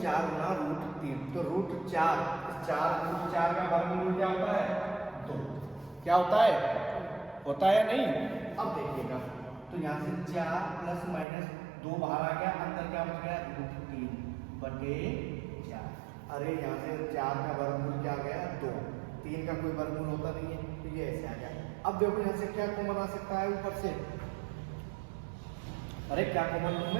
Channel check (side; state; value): left; drops out; at 11.2 s